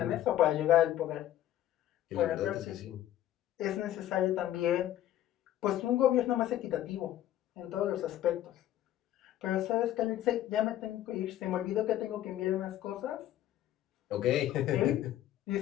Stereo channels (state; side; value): quieter; right; 12.8 dB